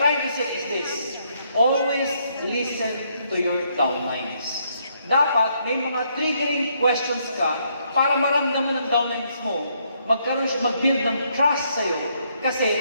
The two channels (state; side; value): inverted; both; correlation -0.72